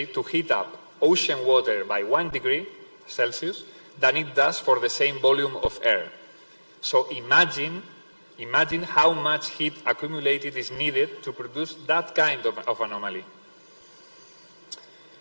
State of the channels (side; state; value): both; inverted; correlation -1.00